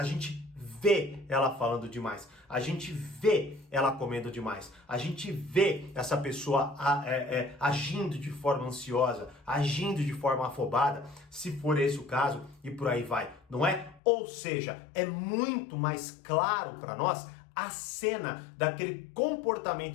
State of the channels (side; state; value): right; drops out; at 14.0 s